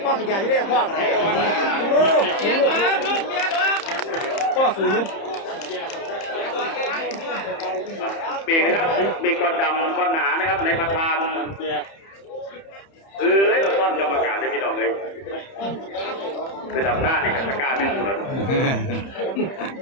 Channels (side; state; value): right; late; 30 ms